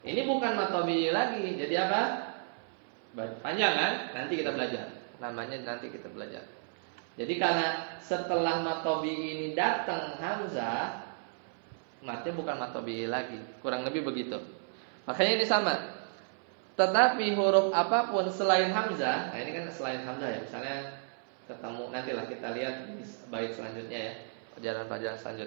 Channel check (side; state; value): left; silent; 56 dB below the other